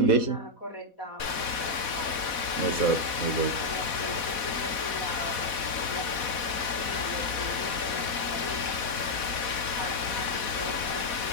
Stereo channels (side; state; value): right; late; 4.1 ms